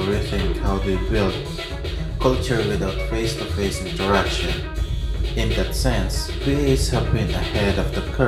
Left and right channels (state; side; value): identical; both; correlation 1.00